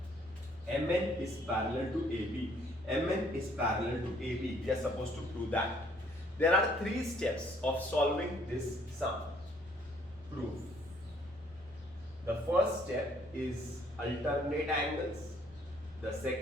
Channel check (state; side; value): noise; left; rumble, 24 dB below the sound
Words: MN is parallel to AB. MN is parallel to AB. We are supposed to prove that. There are 3 steps of solving this sum. Proof. The first step is alternate angles. The